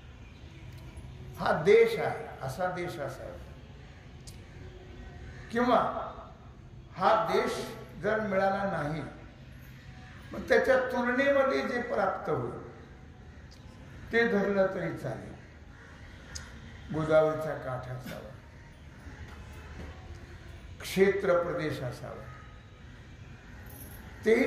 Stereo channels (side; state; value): both; identical; correlation 1.00